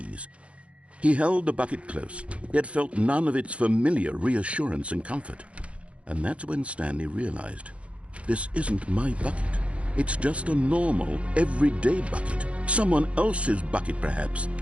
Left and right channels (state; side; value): late; left; 0.062 ms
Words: He held the bucket close, yet felt none of its familiar reassurance and comfort. And that's when Stanley realized, this isn't my bucket. It's just a normal, everyday bucket. Someone else's bucket, perhaps.